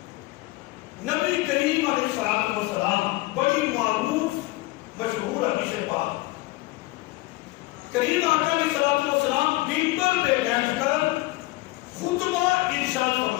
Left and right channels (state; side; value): quieter; right; 20.8 dB